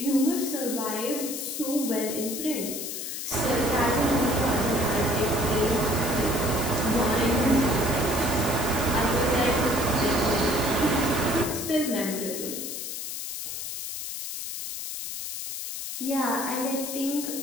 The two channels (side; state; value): left; noise; hiss, 6 dB below the sound